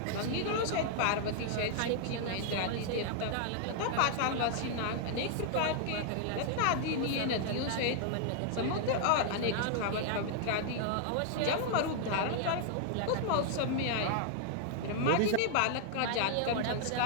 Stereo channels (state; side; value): different; both; correlation -0.01